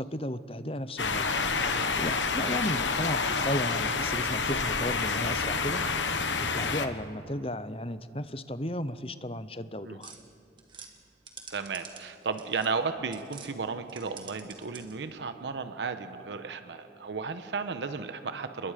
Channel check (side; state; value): both; normal; correlation 0.10